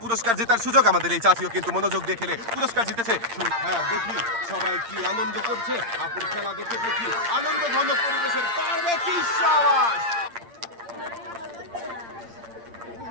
পুরস্কার জেতার সুযোগ। আমাদের এই চাচিও কিন্তু মনোযোগ দিয়ে খেলে পুরস্কার জিতেছে। হ্যাঁ দেখি সবাই কি আনন্দ করছে, আপুর খেলা দেখে দেখি আনন্দ ঘন পরিবেশের পারবে কি সাবাস।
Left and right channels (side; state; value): left; late; 8.7 ms